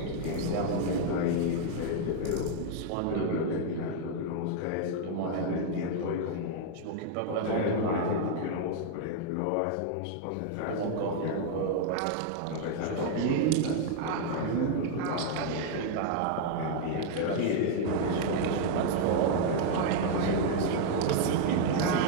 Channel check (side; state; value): both; different; correlation 0.00